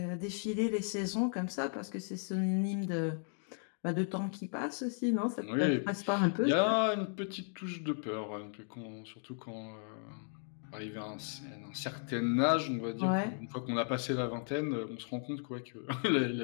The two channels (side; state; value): right; silent; 54 dB below the other